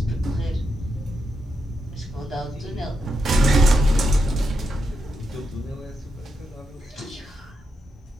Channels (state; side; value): normal; both; correlation 0.84